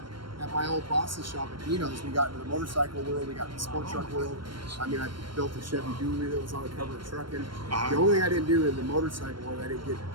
at my old boss's shop at Geno's, we got into the motorcycle world, we got into the sport truck world. I mean, I built a Chevy Dually that was on the cover of Truckin'. The only thing I didn't do in the motorcycle world, I didn't get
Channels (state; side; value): late; left; 0.72 ms